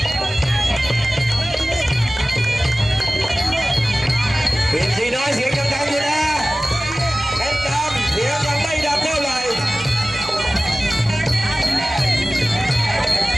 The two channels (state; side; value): normal; both; correlation 0.97